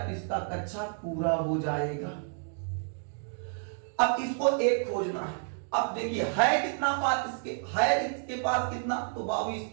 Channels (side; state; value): left; silent; 58 dB below the other